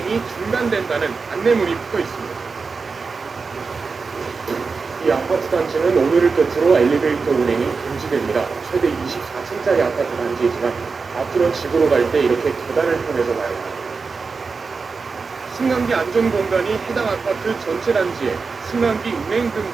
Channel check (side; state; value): left; quieter; 4.7 dB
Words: 중단된다는 안내문이 붙어 있습니다. 이 아파트 단지는 오늘을 끝으로 엘리베이터 운행이 금지됩니다. 최대 24층짜리 아파트 단지이지만 앞으로 집으로 갈 때 이렇게 계단을 통해서 가야 합니다. 승강기 안전공단이 해당 아파트 전체 단지에 승강기 운행